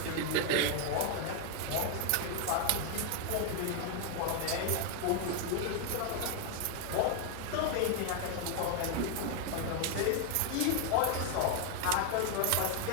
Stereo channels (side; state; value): both; different; correlation 0.00